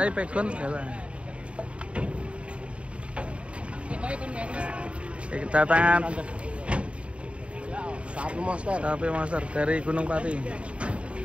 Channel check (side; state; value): left; late; 0.060 ms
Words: ini pegon, galak. Kedatangan sapi monster dari Gunung Pati.